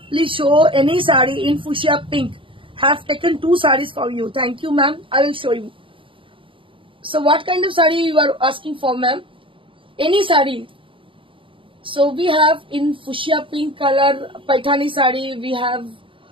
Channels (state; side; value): late; left; 0.25 ms